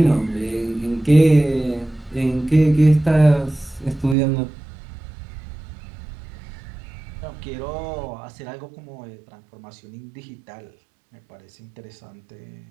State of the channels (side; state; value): left; drops out; at 4.2 s